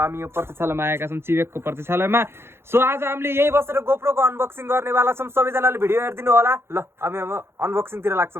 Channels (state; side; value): late; left; 0.12 ms